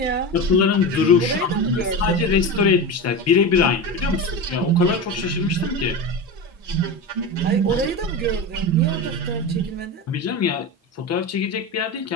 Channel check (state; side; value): normal; both; correlation 0.23